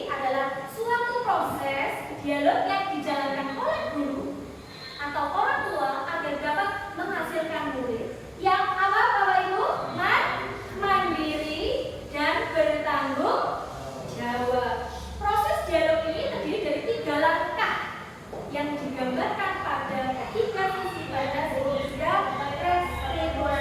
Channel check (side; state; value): both; identical; correlation 1.00